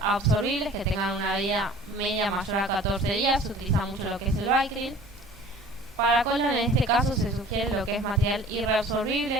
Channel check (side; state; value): both; normal; correlation 0.46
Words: absorbibles, que tengan una vida media mayor a 14 días, se utiliza mucho lo que es el Vicryl. Para colon, en este caso, se sugiere lo que es material